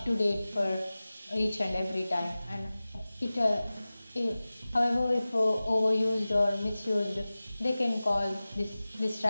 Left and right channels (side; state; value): both; inverted; correlation -0.97